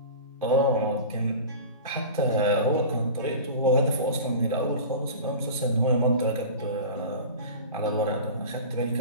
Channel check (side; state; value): both; inverted; correlation -0.34